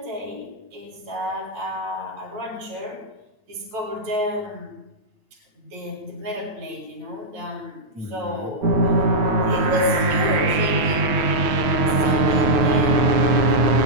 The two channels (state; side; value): late; left; 9.5 ms